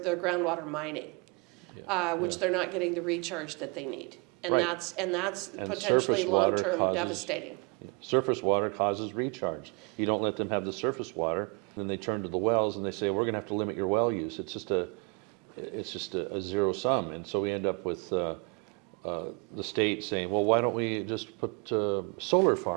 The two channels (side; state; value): left; quieter; 31.5 dB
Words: mining, which they're not getting the recharge that they need. And Right. that's And potentially surface water long-term causes- devastating. Surface water causes recharge. You don't let them have the surface water, then they turn to the wells and they say, we're gonna have to limit your well use. It's just a zero sum. And so we end up with the state saying, well, why don't we just put solar